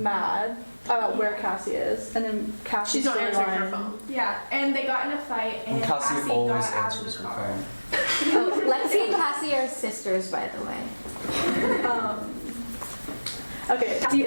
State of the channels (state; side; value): inverted; both; correlation -1.00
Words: about where Cassie is, and then Cassie's not answering her phone. Yeah, and they got in a fight, and Cassie always answers her phone. Oh, Lexi and Cassie are sisters, by the way. Okay, Cassie